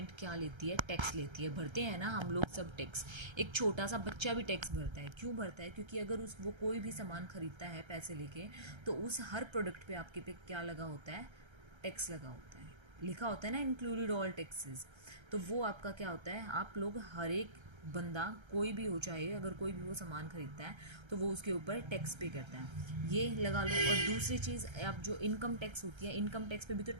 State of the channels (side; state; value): left; late; 1.3 ms